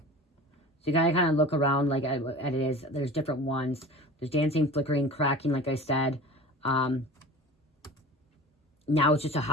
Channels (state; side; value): normal; both; correlation 0.38